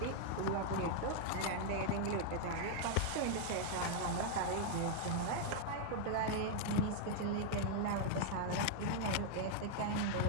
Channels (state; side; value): different; both; correlation 0.00